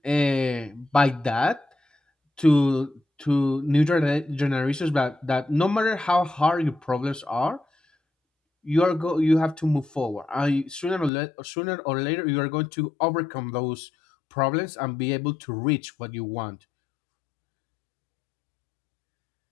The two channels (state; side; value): drops out; right; at 11.1 s